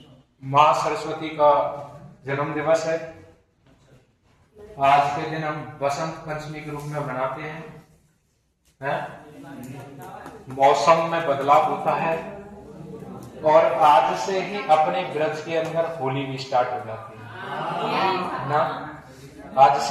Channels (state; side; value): identical; both; correlation 1.00